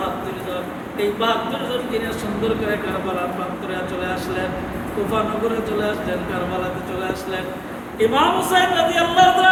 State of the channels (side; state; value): both; identical; correlation 1.00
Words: জন। এই 72 জন কিনে সুন্দর করে কারবালার প্রান্তরে চলে আসলেন, কুফা নগরে চলে আসলেন, কারবালাতে চলে আসলেন। ইমাম হুসাইন রাদিয়াল্লাহু